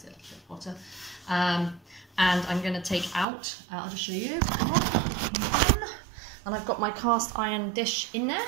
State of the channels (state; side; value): drops out; left; at 3.2 s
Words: it a little bit hotter. And I'm going to take out, I'll just show you, and I've got my cast iron dish in there.